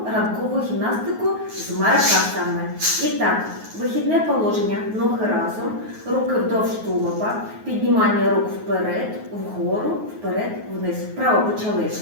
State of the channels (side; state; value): left; late; 9.4 ms